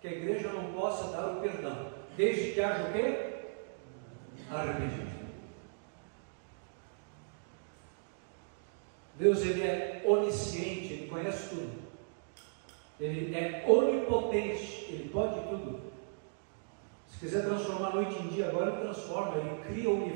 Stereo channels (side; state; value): left; silent; digital silence